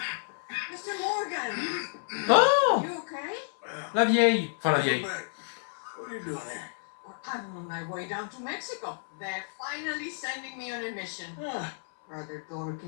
Mr. Morgan, Oh, you okay? la vieille. Enfin, la Come vieille. back. What are you doing here? Well, I'm on my way down to Mexico. They're finally sending me on a mission. Ah. Brother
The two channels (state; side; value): silent; right; 57 dB below the other